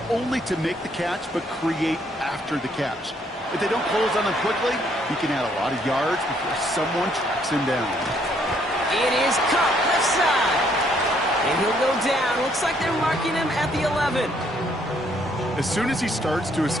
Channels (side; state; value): both; normal; correlation 0.68